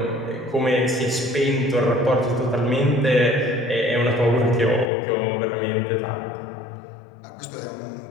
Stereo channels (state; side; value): drops out; right; at 4.9 s